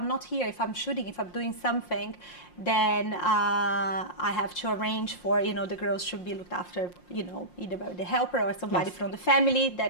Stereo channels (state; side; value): late; right; 5.6 ms